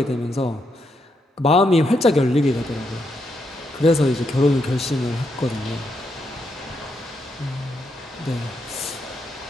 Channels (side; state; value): both; normal; correlation 0.80